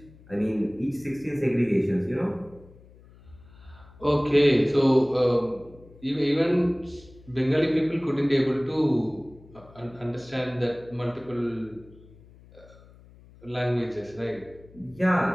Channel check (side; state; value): left; noise; hum, 24 dB below the sound